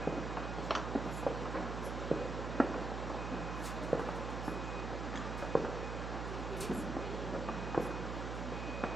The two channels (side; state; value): right; noise; hum, 3 dB below the sound